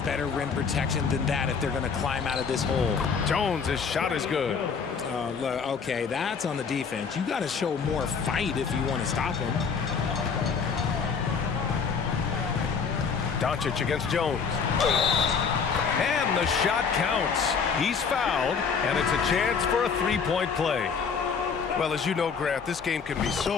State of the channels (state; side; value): quieter; right; 5.9 dB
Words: better rim protection than that if they're going to climb out of this hole. Jones, his shot is good. Look, okay, that's on the defense. You got to show more fight if you want to stop him. Doncic against Jones. And the shot counts. He's fouled, and it's a chance for a three-point play. Well, as you know, Grant, this game can be